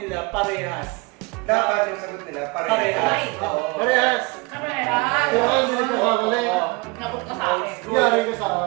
parehas. Dapat yung sagot nila Parehas. Oo. Parehas! Kamera! Kaya hindi ka kamali. Nabuk ka sa akin. Yari ka sa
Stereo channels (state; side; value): quieter; left; 26.8 dB